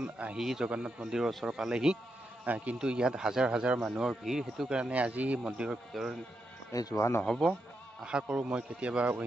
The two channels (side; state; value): both; normal; correlation 0.84